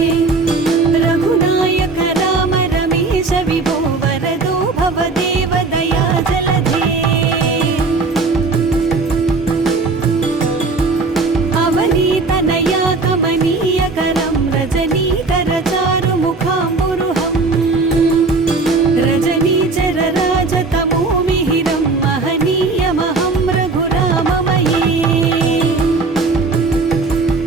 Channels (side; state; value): left; quieter; 3.8 dB